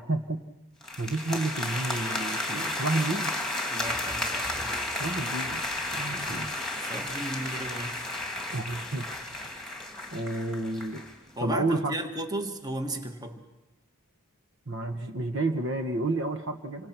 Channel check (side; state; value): both; normal; correlation 0.53